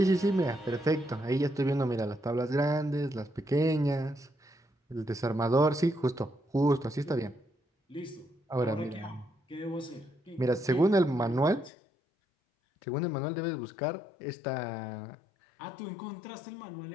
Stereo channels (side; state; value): right; drops out; at 11.7 s